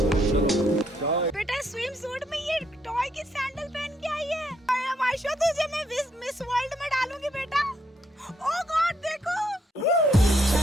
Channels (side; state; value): both; normal; correlation 0.73